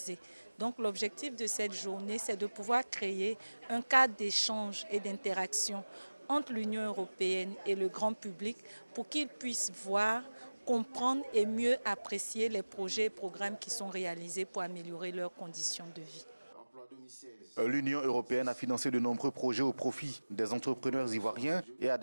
Donc l'objectif de cette journée, c'est de pouvoir créer un cadre d'échange et d'interaction entre l'Union européenne et le grand public pour qu'ils puissent voir, comprendre et mieux apprécier les projets et programmes qui sont réalisés pour améliorer leurs conditions de vie. L'Union européenne a financé de nombreux projets au profit des entrepreneurs ivoiriens et a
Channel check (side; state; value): both; inverted; correlation -1.00